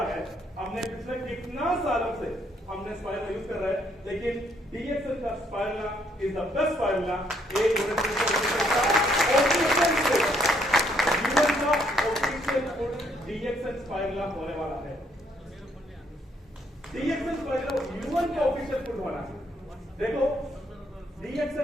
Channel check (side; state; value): both; normal; correlation 0.70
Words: है, हमने पिछले कितना सालों से हमने स्पाइरुला यूज कर रहा है, लेकिन DXN का स्पाइरुला इज द बेस्ट स्पाइरुला। DXN स्पाइरुला होने वाला है, DXN स्पाइरुला यूएन का ऑफिशियल फूड होना है। देखो